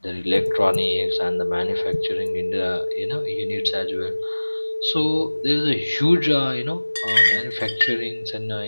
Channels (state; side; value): inverted; both; correlation -1.00